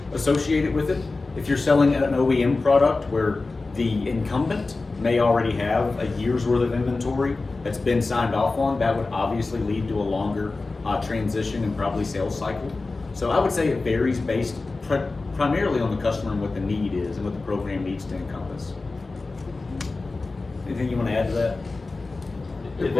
associated with it. If you're selling an OEM product where the incumbent may already have a year's worth of inventory that's been signed off on, that would obviously lead to a longer transition and probably sales cycle. So I would say it varies based primarily on the customer and what the need is and what the program needs to encompass. Anything you want to add to that? It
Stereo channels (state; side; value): quieter; right; 3.6 dB